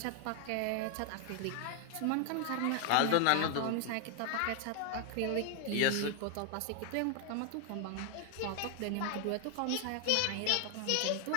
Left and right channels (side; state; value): both; different; correlation 0.00